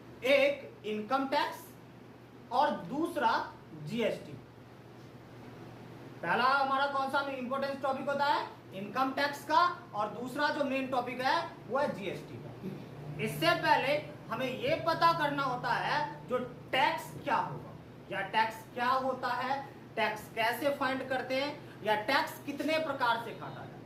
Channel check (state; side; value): identical; both; correlation 1.00